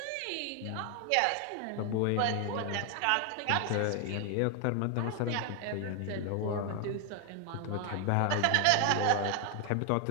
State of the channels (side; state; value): both; different; correlation 0.00